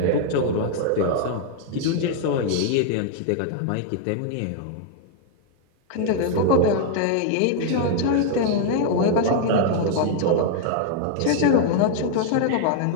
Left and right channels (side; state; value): both; different; correlation -0.01